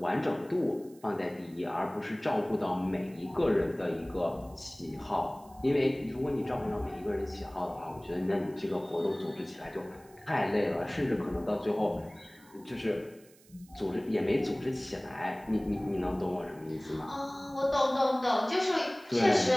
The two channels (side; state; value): right; noise; hiss, 27 dB below the sound